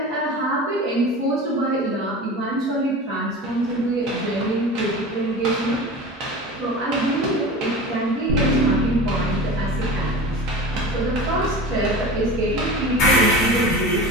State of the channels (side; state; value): both; normal; correlation 0.33